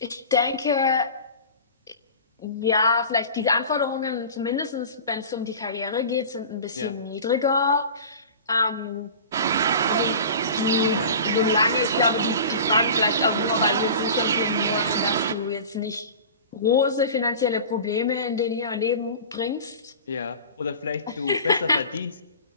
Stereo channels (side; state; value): both; inverted; correlation -0.37